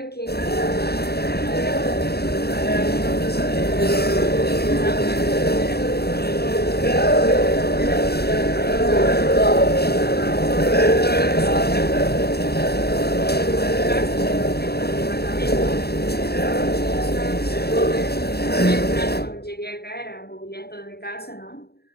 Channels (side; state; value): right; late; 0.47 ms